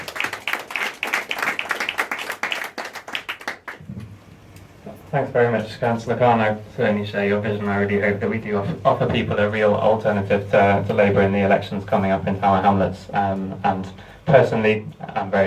Thanks very much, Councillor Khan. I certainly share your vision. I really hope that we do offer people a real alternative to Labour in the elections coming up in Tower Hamlets. And personally, I'm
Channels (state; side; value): identical; both; correlation 1.00